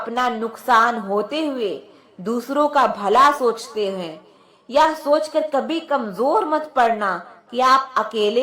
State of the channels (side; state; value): both; identical; correlation 1.00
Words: नुकसान होते हुए दूसरों का भला सोचते हैं। यह सोचकर कभी कमजोर मत पड़ना कि आप